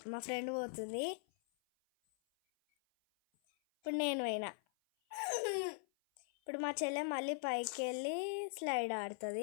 మా ఫ్రెండ్ పోతుంది. ఇప్పుడు నేను పోయినా. ఇప్పుడు మా చెల్లె మళ్ళీ పైకి వెళ్ళి స్లైడ్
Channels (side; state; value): right; silent; 51 dB below the other